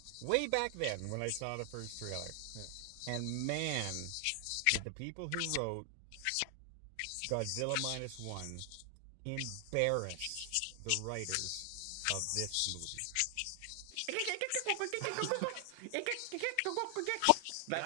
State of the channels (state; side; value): different; both; correlation 0.00